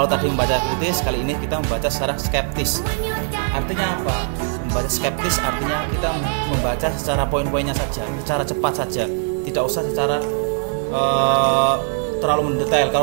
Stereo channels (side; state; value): left; silent; 58 dB below the other